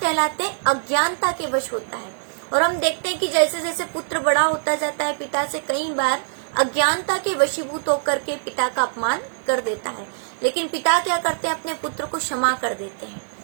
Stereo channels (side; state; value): left; silent; 63 dB below the other